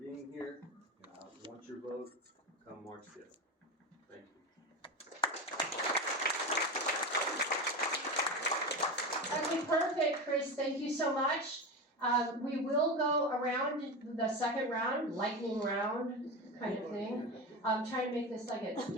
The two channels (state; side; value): normal; both; correlation 0.22